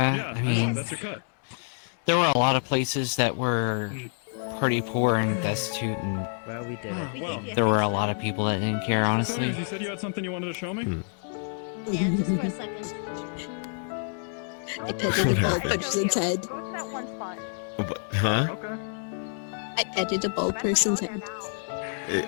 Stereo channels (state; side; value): silent; right; digital silence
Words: Yeah, I mean, that's your cut. there were a lot of places that were pretty poor and destitute, and Well, we did Ah, it. well. there were a lot of people that didn't care, honestly. You said you had something you wanted to show me? Yeah, just for a second. I petted a bald person's head. Huh? I petted a bald person's head.